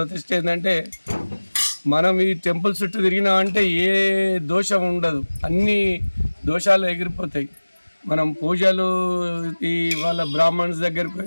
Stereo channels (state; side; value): inverted; both; correlation -1.00